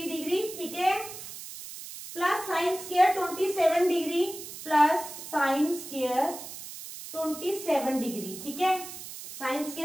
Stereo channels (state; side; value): noise; right; hiss, 11 dB below the sound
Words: degree, ठीक है, plus sine square 27 degree plus sine square 27 degree, ठीक है, sine